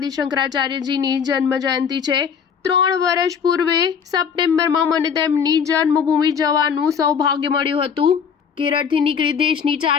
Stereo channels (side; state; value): right; quieter; 7.0 dB